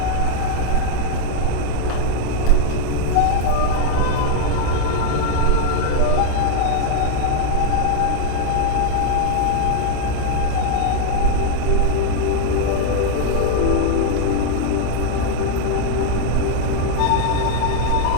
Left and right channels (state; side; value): different; both; correlation 0.00